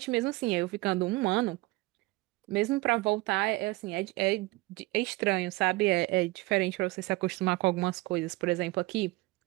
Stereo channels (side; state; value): left; quieter; 21.7 dB